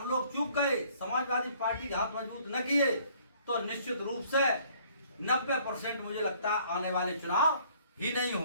लोग चूक गए, समाजवादी पार्टी के हाथ मजबूत न किए, तो निश्चित रूप से 90% मुझे लगता है आने वाले चुनाव ही नहीं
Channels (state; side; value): inverted; both; correlation -0.59